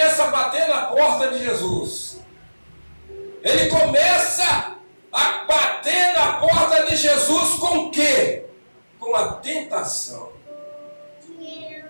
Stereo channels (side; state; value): both; inverted; correlation -1.00